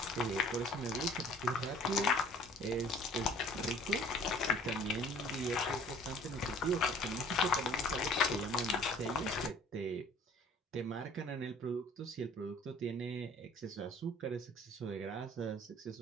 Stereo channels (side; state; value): both; normal; correlation 0.52